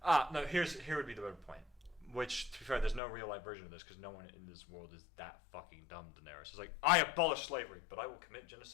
No. Here would be the better point. Which, to be fair, there's no real life version of this because no one in this world is that fucking dumb. Daenerys is like, I abolish slavery, but I will commit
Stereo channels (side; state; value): right; drops out; at 3.0 s